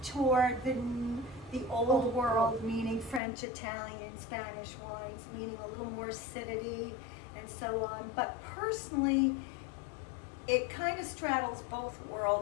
toward the old world, meaning French, Italian, Spanish wines, meaning a little more acidity and so on. But personally, it kind of straddles both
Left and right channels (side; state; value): right; drops out; at 3.2 s